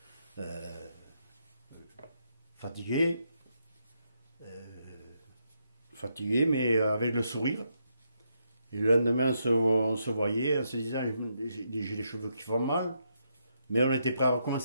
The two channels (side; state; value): both; inverted; correlation -0.79